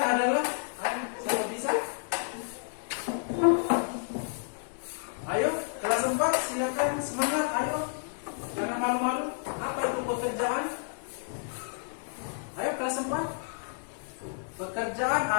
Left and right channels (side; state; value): right; silent; digital silence